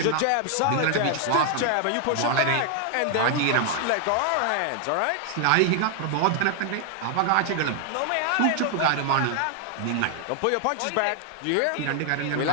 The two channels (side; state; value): both; different; correlation 0.00